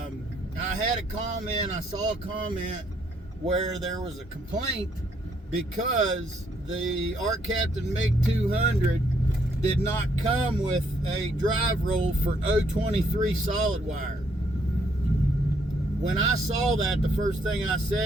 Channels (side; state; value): both; normal; correlation 0.70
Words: had a comment, I saw a comment where there was a complaint because the ARCCAPTAIN MIG 200 did not come with a drive roll for 023 solid wire. When I saw that, the first thing I